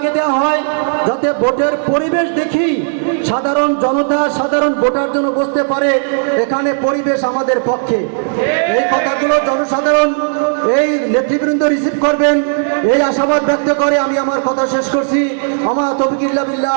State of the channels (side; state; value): left; silent; digital silence